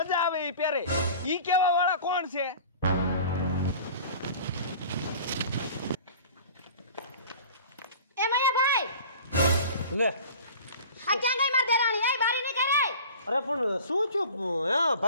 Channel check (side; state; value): both; inverted; correlation -0.41